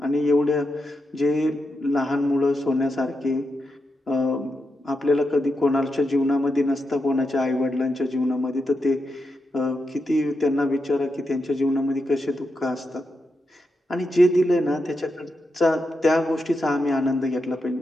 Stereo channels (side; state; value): both; normal; correlation 0.86